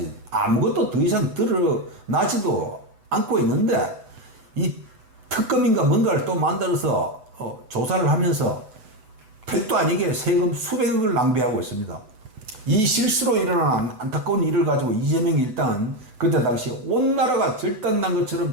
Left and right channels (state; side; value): late; left; 8.0 ms